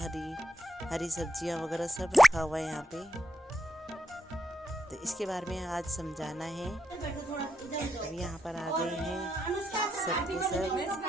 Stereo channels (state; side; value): normal; both; correlation 0.81